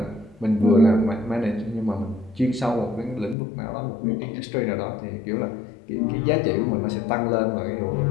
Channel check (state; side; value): drops out; right; at 3.4 s